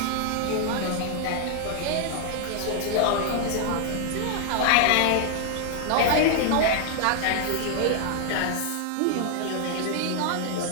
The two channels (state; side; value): different; both; correlation 0.00